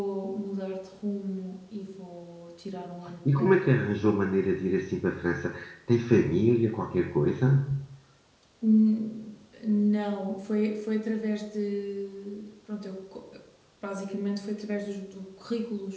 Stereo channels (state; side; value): identical; both; correlation 1.00